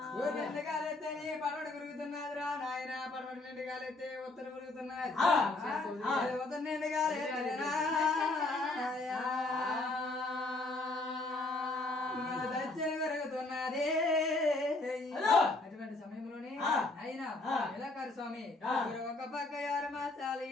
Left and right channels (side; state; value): right; quieter; 3.1 dB